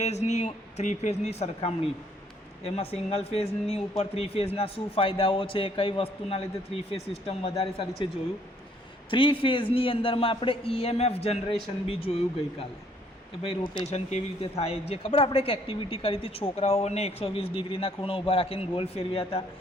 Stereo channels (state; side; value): normal; both; correlation 0.65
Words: થ્રી ફેઝની સરખામણી, એમાં સિંગલ ફેઝની ઉપર થ્રી ફેઝના શું ફાયદાઓ છે, કઈ વસ્તુના લીધે થ્રી ફેઝ સિસ્ટમ વધારે સારી છે જોયું. થ્રી ફેઝની અંદરમાં આપણે ઈએમએફ જનરેશન બી જોયું ગઈકાલે કે ભાઈ રોટેશન કેવી રીતે થાય. જે ખબર આપણે એક એક્ટિવિટી કરી હતી, છોકરાઓને 120 ડિગ્રીના ખૂણે ઊભા રાખીને ગોલ ફેરવ્યા હતા.